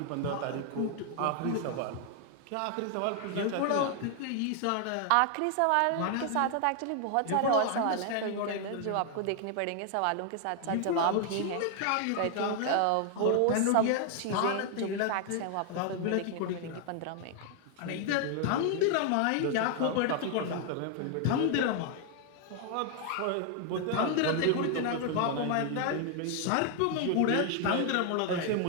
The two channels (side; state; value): both; different; correlation 0.00